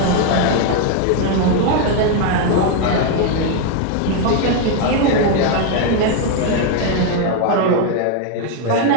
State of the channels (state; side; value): different; both; correlation 0.01